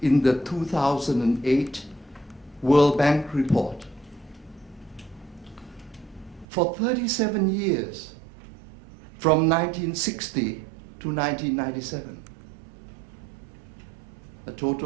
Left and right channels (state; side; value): drops out; left; at 6.5 s